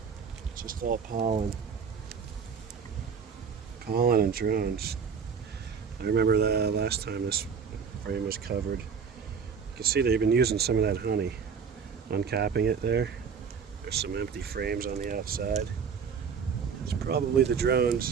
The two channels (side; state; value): left; quieter; 6.3 dB